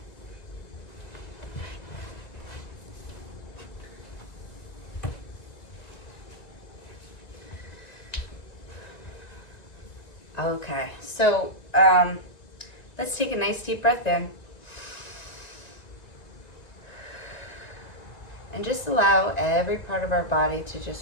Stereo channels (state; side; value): late; right; 1.9 ms